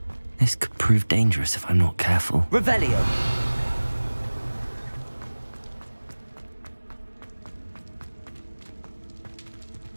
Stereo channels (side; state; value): both; inverted; correlation -1.00